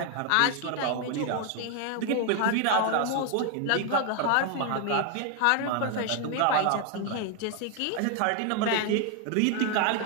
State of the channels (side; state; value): both; different; correlation 0.01